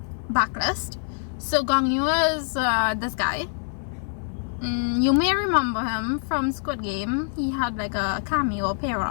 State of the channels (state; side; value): silent; right; digital silence